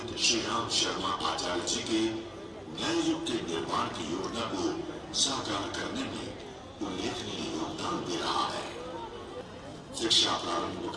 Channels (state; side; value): identical; both; correlation 1.00